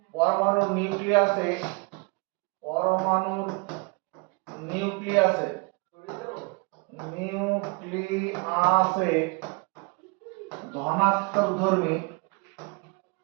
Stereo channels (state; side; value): quieter; left; 29.8 dB